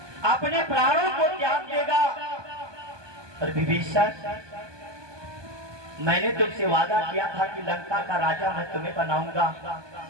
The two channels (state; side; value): late; left; 1.2 ms